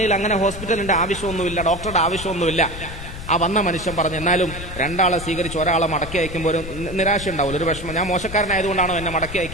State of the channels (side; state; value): left; noise; rumble, 10 dB below the sound